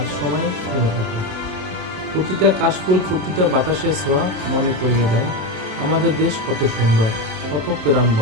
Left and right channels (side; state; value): left; late; 27 ms